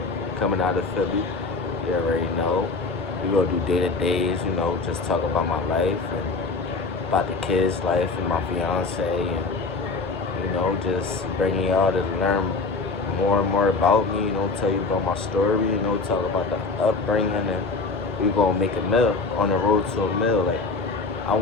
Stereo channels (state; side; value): quieter; right; 3.9 dB